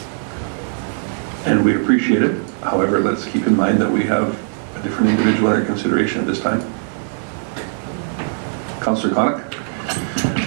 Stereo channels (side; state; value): left; silent; digital silence